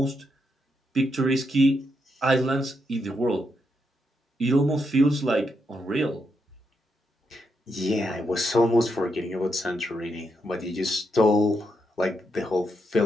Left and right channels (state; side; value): normal; both; correlation 0.81